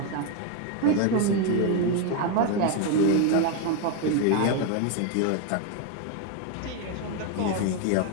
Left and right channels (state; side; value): different; both; correlation 0.01